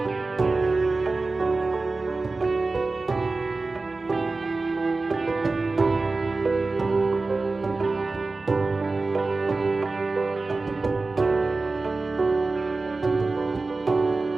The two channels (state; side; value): quieter; left; 3.6 dB